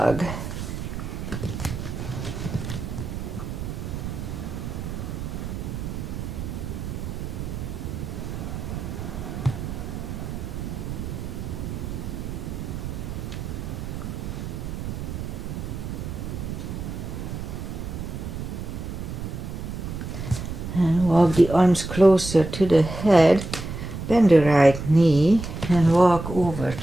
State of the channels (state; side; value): noise; right; rumble, 6 dB below the sound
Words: And walk the arms closer to the head, bend the right knee and walk over